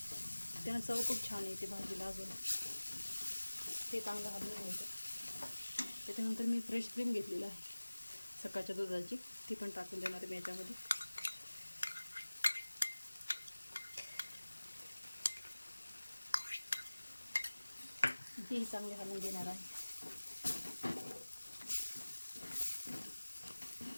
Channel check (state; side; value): inverted; both; correlation -1.00